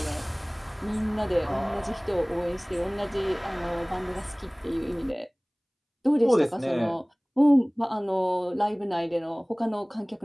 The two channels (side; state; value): both; identical; correlation 1.00